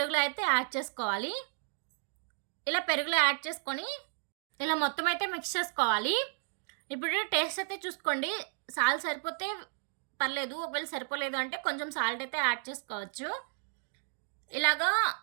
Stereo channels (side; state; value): left; silent; digital silence